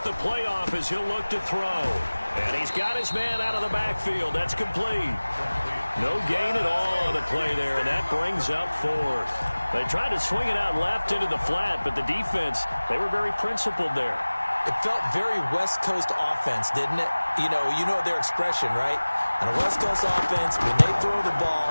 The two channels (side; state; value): both; inverted; correlation -1.00